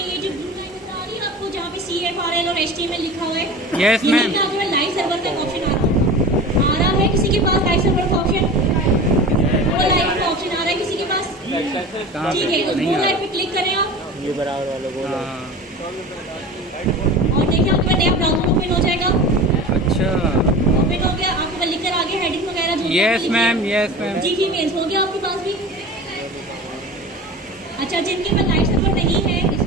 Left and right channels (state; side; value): normal; both; correlation 0.34